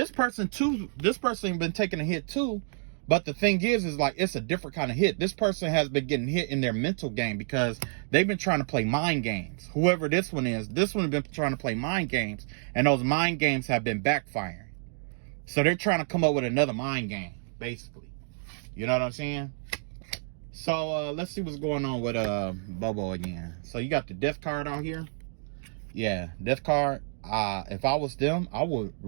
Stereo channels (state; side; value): silent; left; digital silence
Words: person been taking a hit too. But the thing is like, it's a different kind of hit. This person has been getting hit in their mental game because they've been trying to play mind games. Whoever this one is, this one has been trying to play mind games, and those mind games have been backfiring. So they're trying to come up with another mind game, basically. You know what I'm saying? So let's see what's going on with Bobo again. So you got the Death card out here. Yeah, Death card. If I was them, I would